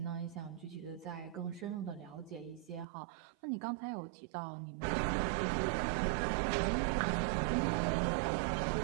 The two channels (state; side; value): drops out; left; at 2.9 s